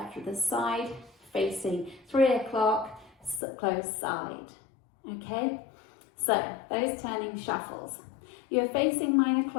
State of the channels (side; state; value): right; drops out; at 3.4 s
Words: to the side, facing 3 o'clock, close side. Okay, so those turning shuffles. You're facing 9